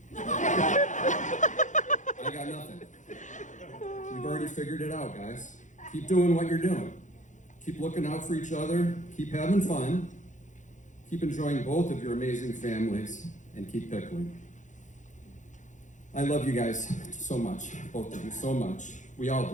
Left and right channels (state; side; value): late; right; 0.36 ms